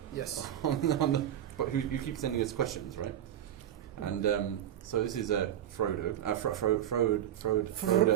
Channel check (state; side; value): quieter; left; 11.0 dB